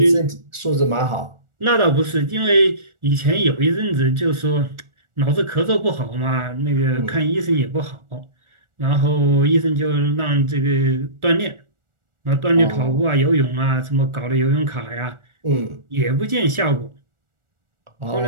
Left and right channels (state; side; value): late; left; 1.4 ms